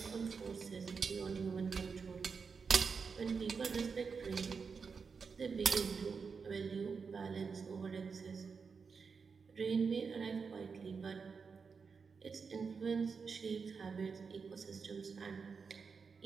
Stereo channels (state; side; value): quieter; left; 5.4 dB